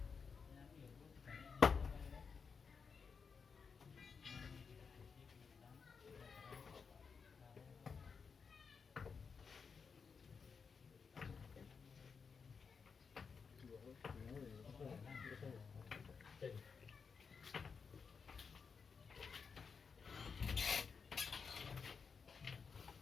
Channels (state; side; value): quieter; right; 5.6 dB